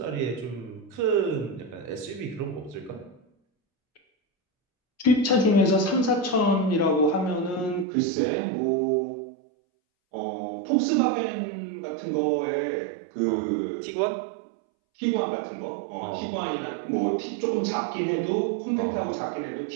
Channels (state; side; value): drops out; left; at 7.9 s